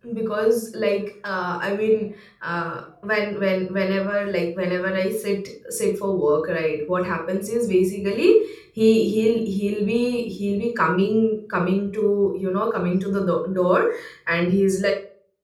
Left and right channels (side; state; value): both; identical; correlation 1.00